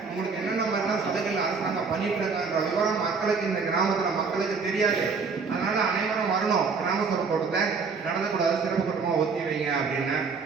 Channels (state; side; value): quieter; left; 5.0 dB